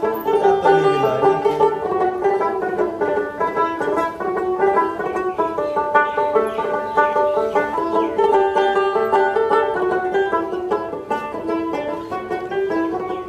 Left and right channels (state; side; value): identical; both; correlation 1.00